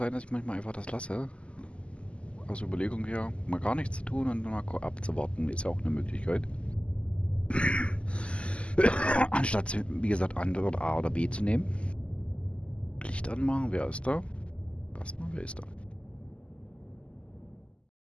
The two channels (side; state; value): right; late; 0.055 ms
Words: dass ich manchmal einfach das lasse. Aus Überlegung her, mal gar nichts zu tun und mal abzuwarten, ist ja auch eine Möglichkeit. Anstatt, wie gesagt, Antwort A oder B zu nehmen. Licht anmachen, wer ist da? Erstmal, wer ist da?